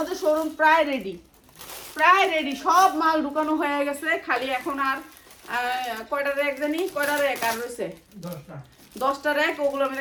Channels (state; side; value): identical; both; correlation 1.00